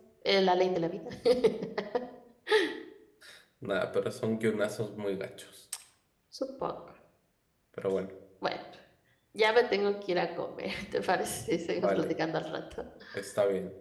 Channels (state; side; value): identical; both; correlation 1.00